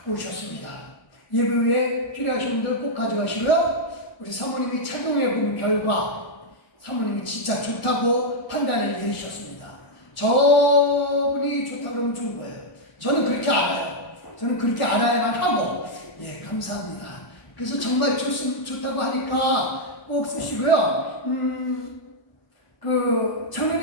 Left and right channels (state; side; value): late; right; 1.4 ms